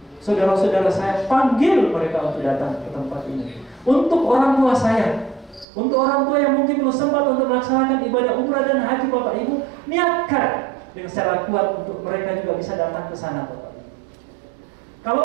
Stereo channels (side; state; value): left; drops out; at 5.7 s